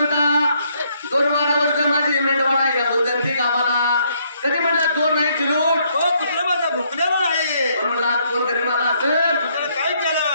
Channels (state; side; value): inverted; both; correlation -0.70